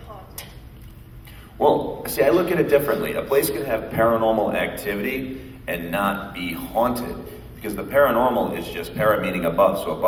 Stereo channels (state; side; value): identical; both; correlation 1.00